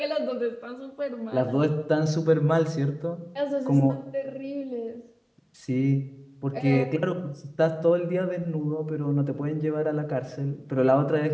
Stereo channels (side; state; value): both; identical; correlation 1.00